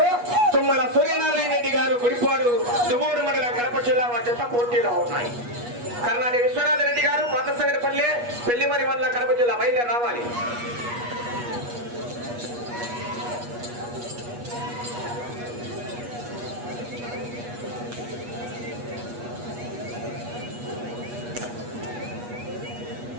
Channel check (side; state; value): left; late; 8.3 ms